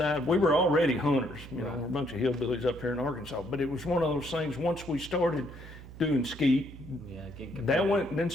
we were already hunters. You know, we're a bunch of hillbillies up here in Arkansas, but it was one of those things, once we started doing skeet, that went, then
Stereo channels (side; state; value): right; noise; hum, 15 dB below the sound